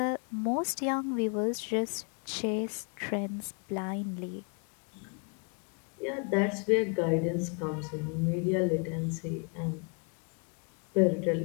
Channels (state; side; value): quieter; right; 38.2 dB